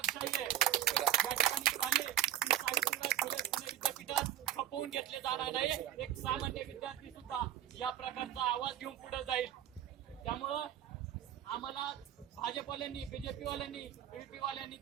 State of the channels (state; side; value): quieter; left; 11.6 dB